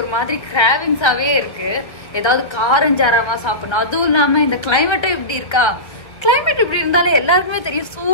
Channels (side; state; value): right; late; 1.7 ms